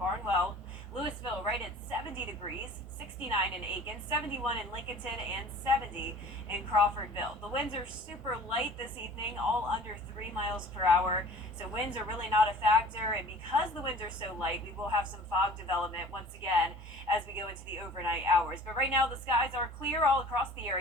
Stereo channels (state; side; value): normal; both; correlation 0.46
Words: Louisville right at 70 degrees, 69 in Aiken, 71 in Lincolnton, and 70 in Crawfordville. The winds are super light this evening, all under 3 miles per hour, so winds are really not a factor, and because the winds are so light, we will have some fog development once again as we go into the overnight hours. But right now the skies are clear all across the